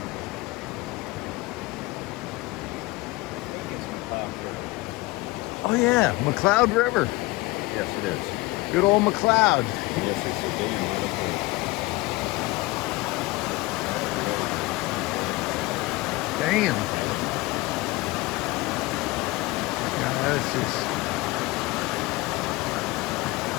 Oh yeah, McCloud River. Yes, it is. Good old McCloud. Yes, it's a dam right up there. Damn. Yeah, that's just...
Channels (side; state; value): right; quieter; 21.5 dB